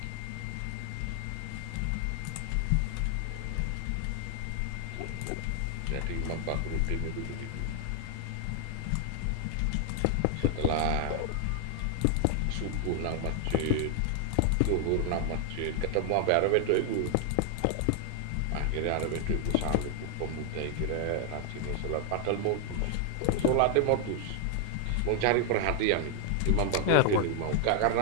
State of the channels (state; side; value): different; both; correlation 0.00